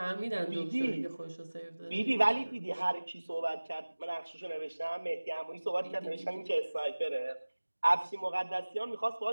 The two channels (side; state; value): both; inverted; correlation -1.00